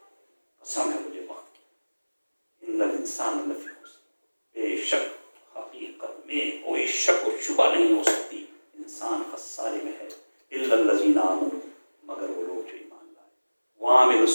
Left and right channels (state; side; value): inverted; both; correlation -1.00